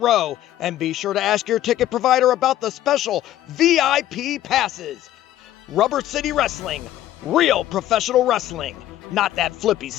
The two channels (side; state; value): right; quieter; 13.3 dB